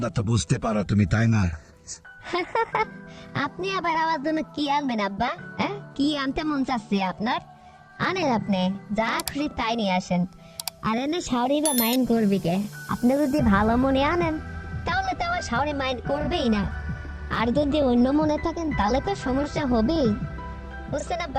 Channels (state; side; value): identical; both; correlation 1.00